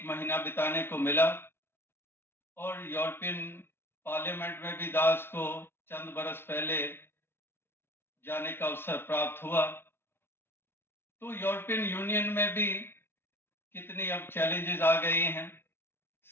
महीना बिताने को मिला और यूरोपियन पार्लियामेंट में भी दास को चंद बरस पहले जाने का अवसर प्राप्त हुआ। तो यूरोपियन यूनियन में भी कितनी अब चैलेंजेस आ गई हैं।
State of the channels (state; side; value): late; right; 0.11 ms